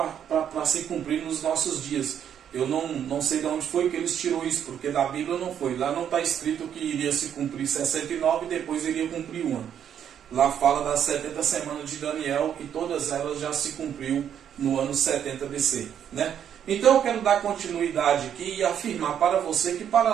se cumprir nos nossos dias. Eu não sei de onde foi que eles tirou isso, porque da Bíblia não foi. Lá não está escrito que iria se cumprir 69 e depois iria cumprir uma. Lá fala das 70 semanas de Daniel e todas elas já se cumpriu no ano 70 BC, né? Então eu quero dar continuidade aqui e afirmar para você que para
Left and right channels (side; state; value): left; quieter; 9.1 dB